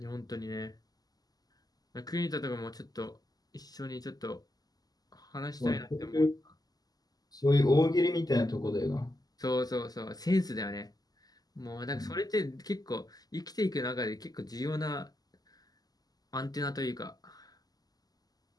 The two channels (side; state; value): right; late; 0.18 ms